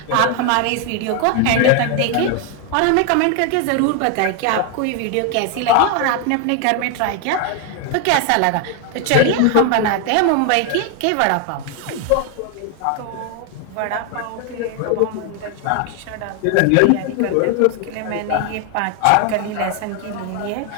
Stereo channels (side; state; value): both; different; correlation 0.01